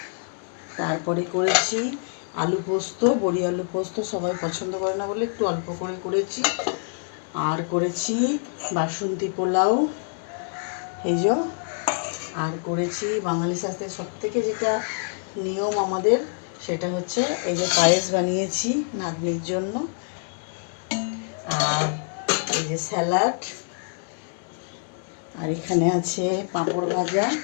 তারপরে করেছি আলু পোস্ত, বড়ি আলু পোস্ত, সবাই পছন্দ করে না বলে একটু অল্প করে করেছি। আর করেছি বাসন্তী পোলাও, এই যে। আর করেছি বাঙালি শাস্ত্রের সবথেকে যেটা নিয়ম আমাদের, সেটা হচ্ছে এই যে পায়েস বানিয়েছি নাতনির জন্য, আর এই যে স্যালাড, আর এখানে আছে পাঁপড় ভাজা,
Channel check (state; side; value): silent; right; digital silence